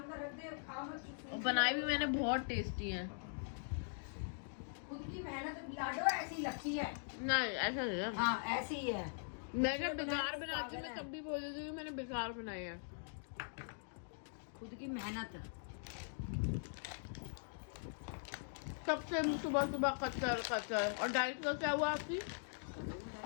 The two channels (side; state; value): right; silent; digital silence